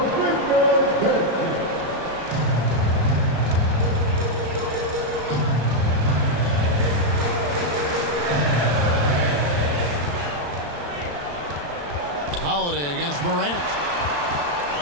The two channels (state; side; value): late; left; 34 ms